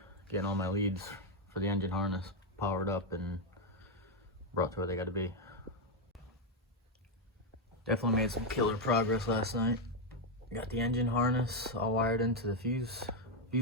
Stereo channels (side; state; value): both; normal; correlation 0.02